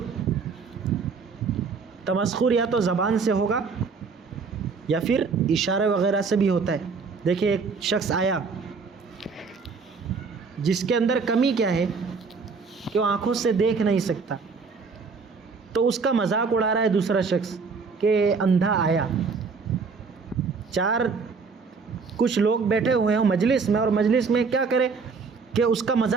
تمسخر یا تو زبان سے ہوگا یا پھر اشارے وغیرہ سے بھی ہوتا ہے. دیکھیں ایک شخص آیا جس کے اندر کمی کیا ہے کہ وہ آنکھوں سے دیکھ نہیں سکتا, تو اس کا مذاق اڑا رہا ہے دوسرا شخص کہ اندھا آیا. کچھ لوگ بیٹھے ہوئے ہیں مجلس میں, اور مجلس میں کیا کرے کہ اس کا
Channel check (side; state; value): left; quieter; 4.9 dB